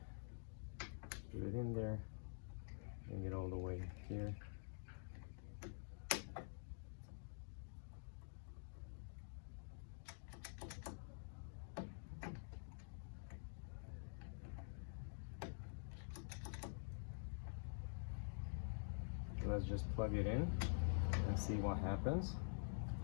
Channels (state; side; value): silent; right; digital silence